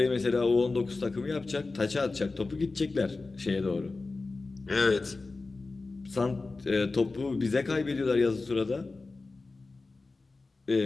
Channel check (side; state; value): right; quieter; 3.6 dB